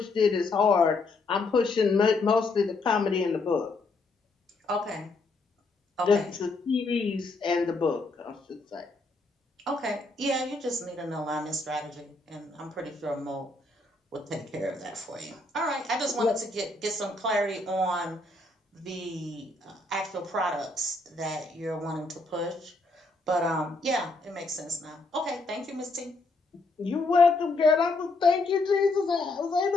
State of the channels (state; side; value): quieter; right; 3.2 dB